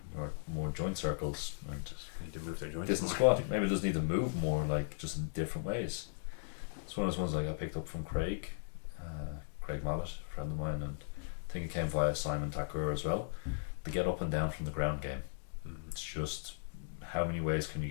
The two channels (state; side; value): silent; right; digital silence